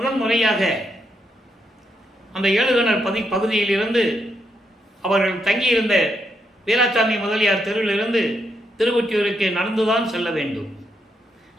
முறையாக அந்த ஏழுகணர் பகுதியிலிருந்து அவர்கள் தங்கியிருந்த வீராசாமி முதலியார் தெருவிலிருந்து திருவொற்றியூருக்கு நடந்துதான் செல்ல வேண்டும்.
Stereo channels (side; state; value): both; normal; correlation 0.79